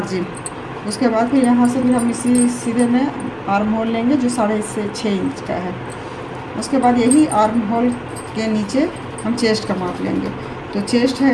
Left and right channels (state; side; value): identical; both; correlation 1.00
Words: उसके बाद फिर यहाँ से भी हम इसी सीधे में आर्म होल लेंगे, जो 6.5 इंच का है। उसके बाद यही आर्म होल के नीचे हम चेस्ट का माप लेंगे। तो चेस्ट